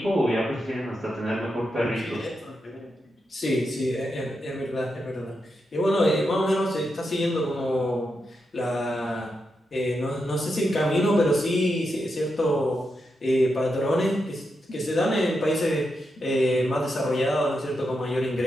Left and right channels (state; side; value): normal; both; correlation 0.86